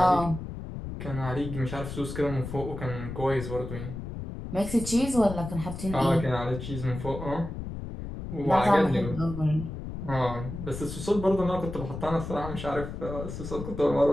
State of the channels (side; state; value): left; noise; rumble, 8 dB below the sound